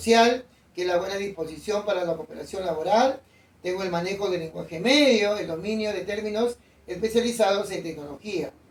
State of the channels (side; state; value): both; identical; correlation 1.00